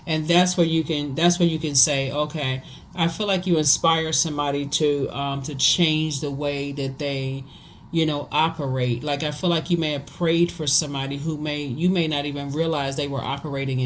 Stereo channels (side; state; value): both; identical; correlation 1.00